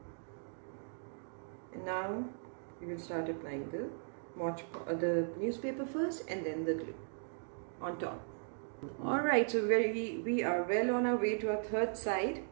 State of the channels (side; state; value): left; silent; digital silence